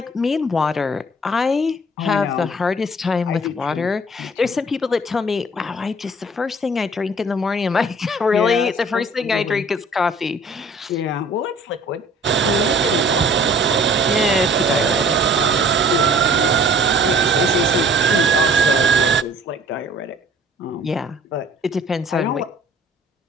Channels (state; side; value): normal; both; correlation 0.52